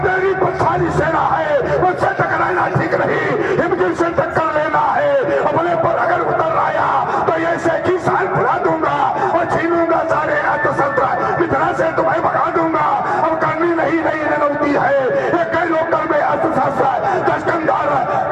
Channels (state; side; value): identical; both; correlation 1.00